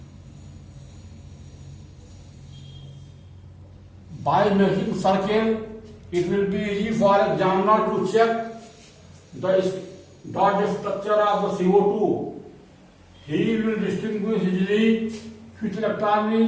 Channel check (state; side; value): identical; both; correlation 1.00